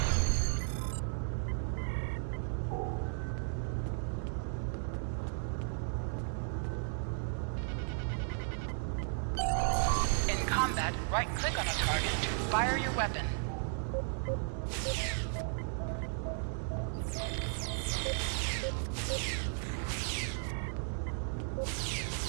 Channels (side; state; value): left; silent; 54 dB below the other